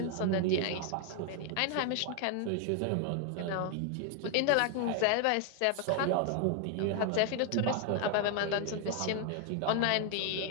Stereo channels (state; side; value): different; both; correlation 0.00